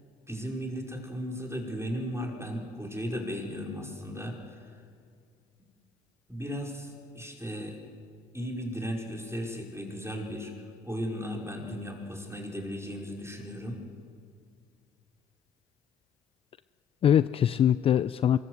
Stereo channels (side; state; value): right; quieter; 5.7 dB